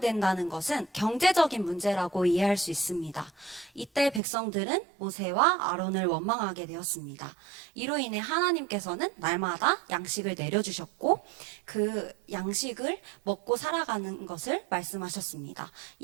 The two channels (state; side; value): drops out; left; at 4.2 s